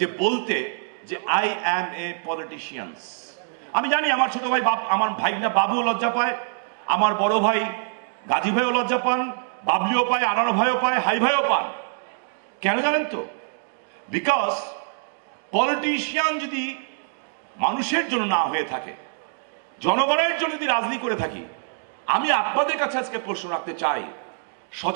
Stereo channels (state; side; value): silent; left; digital silence